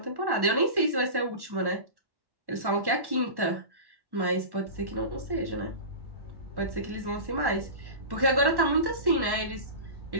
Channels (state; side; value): late; left; 1.1 ms